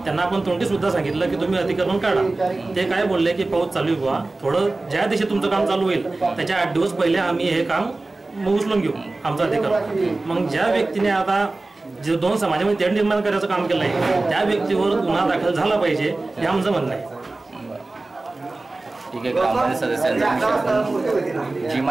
त्यांना आपण तोंडी सुद्धा सांगितलं की तुम्ही अतिक्रमण काढा. ते काय बोलले की पाऊस चालू आहे, थोडं ज्या दिवशी तुमचं काम चालू होईल त्याच्या 8 दिवस पहिले आम्ही हे काम उचलून घेऊ आमचं अधिक्रमण. मग ज्या व्यक्तीने आता जे 2 समाजामध्ये तेढ निर्माण करायचं काम केलं आहे त्या व्यक्तीवर गुन्हा दाखल झाला पाहिजे हे आमचं म्हणणं आहे. ठीक आहे. ग्रामपंचायत सदस्यांनी जी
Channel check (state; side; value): quieter; left; 3.2 dB